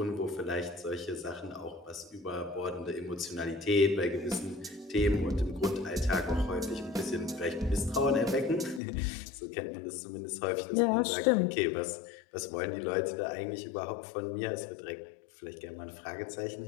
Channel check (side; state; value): right; drops out; at 8.8 s